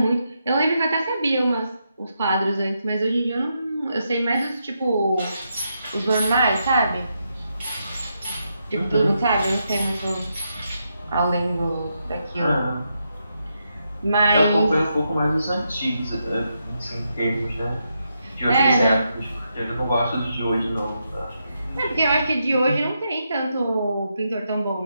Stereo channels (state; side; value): inverted; both; correlation -0.82